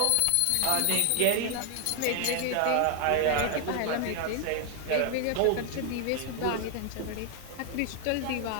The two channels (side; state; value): both; different; correlation 0.00